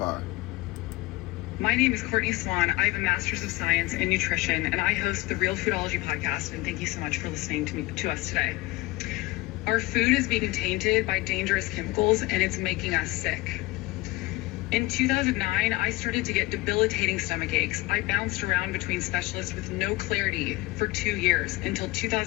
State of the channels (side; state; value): right; quieter; 20.6 dB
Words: My name is Courtney Swan. I have a Master's of Science in Nutrition, and I host the Real Foodology podcast, and thank you so much for listening to us today. Our food is being tainted by dangerous chemicals, and it's making us sick. In 2009, I started to get debilitating stomach aches. I bounced around between specialists with no clarity for 2 years until